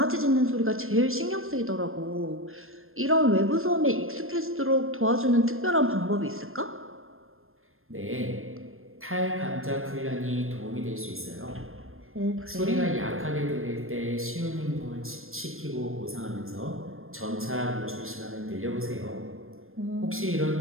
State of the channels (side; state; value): left; late; 0.61 ms